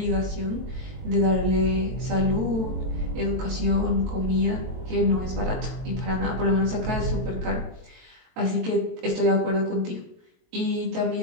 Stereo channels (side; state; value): left; late; 22 ms